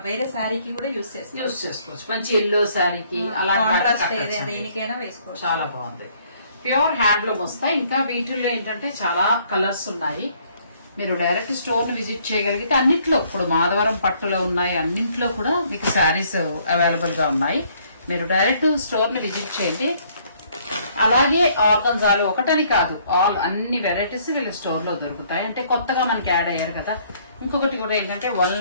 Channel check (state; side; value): inverted; both; correlation -0.64